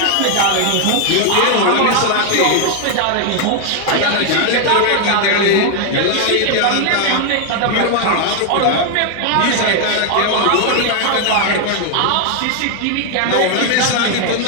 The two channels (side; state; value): both; different; correlation 0.00